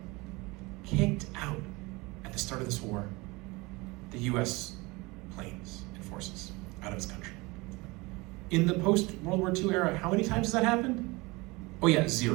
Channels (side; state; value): left; quieter; 24.0 dB